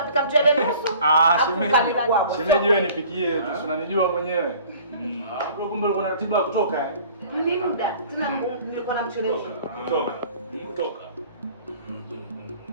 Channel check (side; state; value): both; inverted; correlation -0.50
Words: mchele nusu. Shemeji. Shemeji wewe nipikie tu, unanijua mwenyewe. Bro kumbe uko na ratiba ya kutoka. Ni muda. Tuna nilikuwa na mchele nusu. Kutoka.